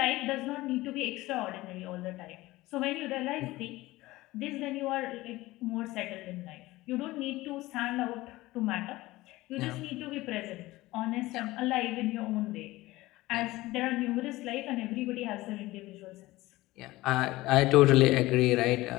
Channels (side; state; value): right; quieter; 18.7 dB